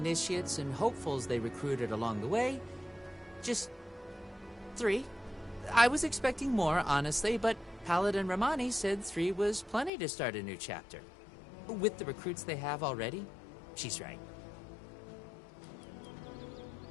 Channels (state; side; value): drops out; right; at 9.9 s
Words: and hopefuls they recruited along the way, just 3. I was expecting more, honestly, but Paladin Romani said 3 was plenty to start a new chapter. With the recruits they have already, she's right.